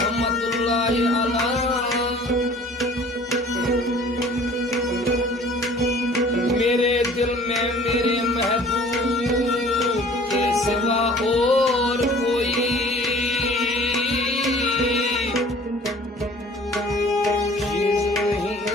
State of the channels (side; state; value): both; normal; correlation 0.49